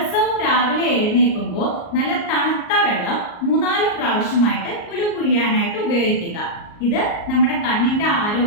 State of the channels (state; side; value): late; right; 38 ms